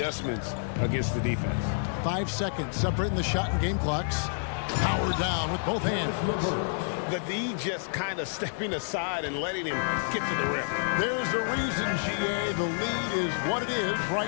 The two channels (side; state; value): right; silent; digital silence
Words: against the defense. 5 seconds separating the shot and game clocks. Power down with both hands. The D just kind of stepping aside and letting him get to the rim. There's a reason, GA, the lead is what it is